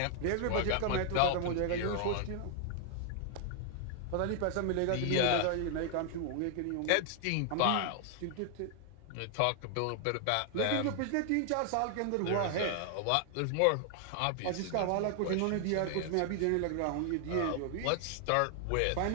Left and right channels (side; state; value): both; different; correlation 0.00